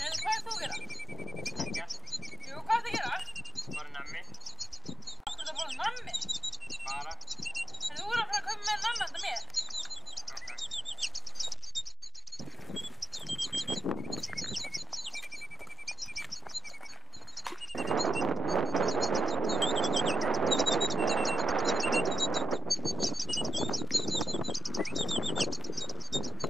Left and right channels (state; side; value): normal; both; correlation 0.83